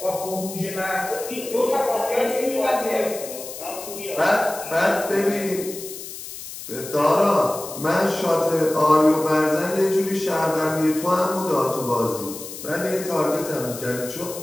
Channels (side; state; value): left; noise; hiss, 11 dB below the sound